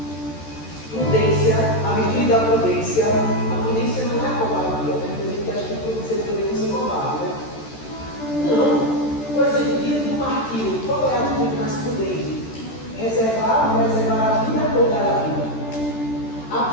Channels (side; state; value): right; late; 13 ms